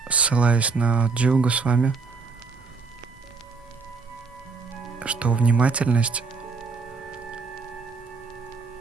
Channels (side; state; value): left; quieter; 4.5 dB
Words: ссылаясь на Дживу Госвами, что внимательность